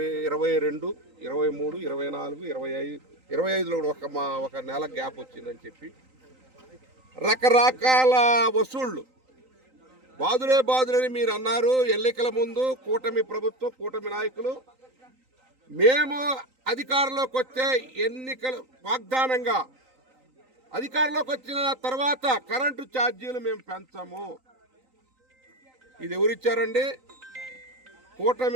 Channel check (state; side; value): late; left; 3.9 ms